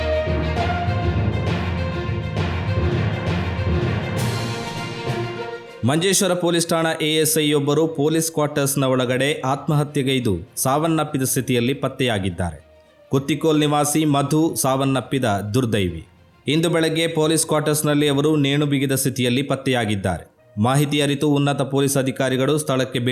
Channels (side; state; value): both; identical; correlation 1.00